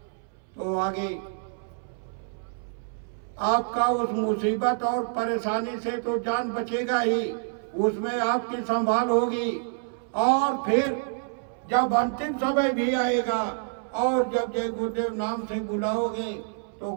तो आगे आपका उस मुसीबत और परेशानी से तो जान बचेगा ही, उसमें आपकी संभाल होगी। और फिर जब अंतिम समय भी आएगा और जब जय गुरुदेव नाम से बुलाओगे तो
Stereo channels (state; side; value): silent; left; 60 dB below the other